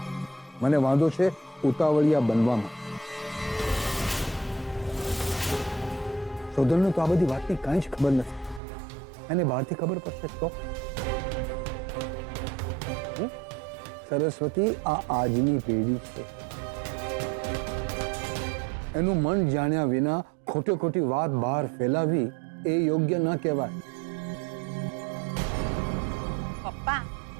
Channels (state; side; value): drops out; left; at 8.6 s